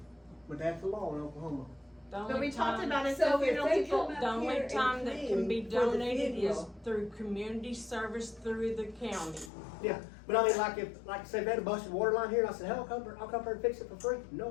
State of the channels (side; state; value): right; drops out; at 9.5 s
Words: But that's the law in Oklahoma. But we talked about it, So so if funeral they people, come out The only here and time that can be clean for the donated is funeral, through community service through the county. Yeah, but I mean, like I said, they had a busted water line here, and I said, hell, I'll come here and fix it for free.